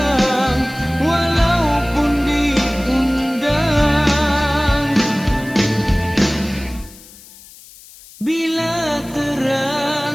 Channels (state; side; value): noise; left; hiss, 21 dB below the sound